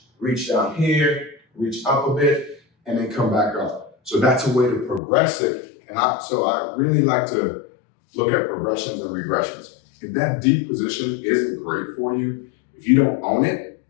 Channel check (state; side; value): drops out; right; at 5.0 s